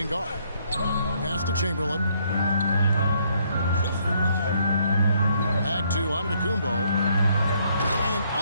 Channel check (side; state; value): both; inverted; correlation -0.69